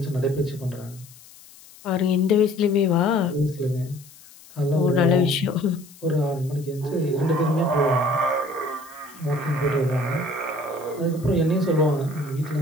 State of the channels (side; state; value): left; noise; hiss, 22 dB below the sound